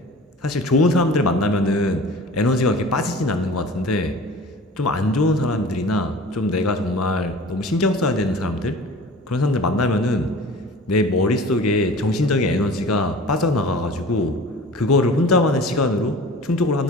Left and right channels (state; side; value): normal; both; correlation 0.41